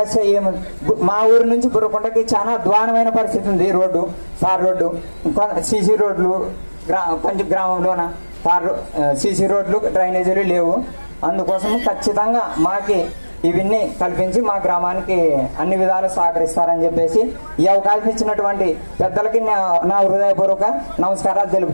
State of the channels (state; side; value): inverted; both; correlation -1.00